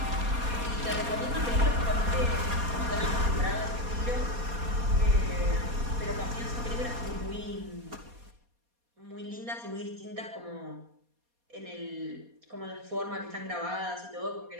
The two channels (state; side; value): late; left; 4.2 ms